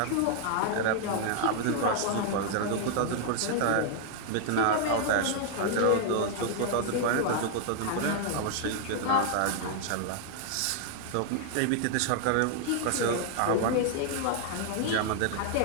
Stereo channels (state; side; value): different; both; correlation 0.00